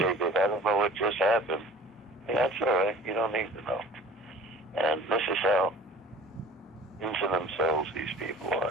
goes, I don't know what just happened. Yeah, that's all right. You don't need to know. And this is how into themselves these people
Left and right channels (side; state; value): both; normal; correlation 0.46